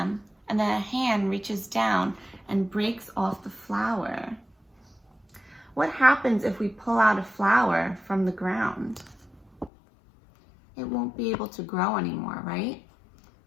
and then a hand reaches down and breaks off the flower. What happens if we pull out a flower from the ground? It won't be able to grow anymore, right?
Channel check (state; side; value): drops out; right; at 9.7 s